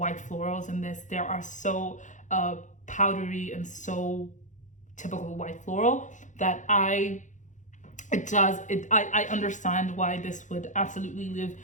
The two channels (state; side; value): late; right; 0.36 ms